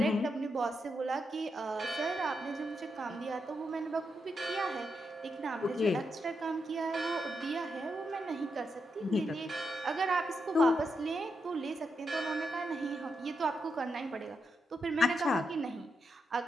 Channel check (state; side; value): normal; both; correlation 0.84